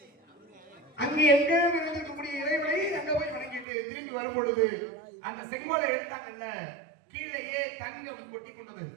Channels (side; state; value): left; drops out; at 3.7 s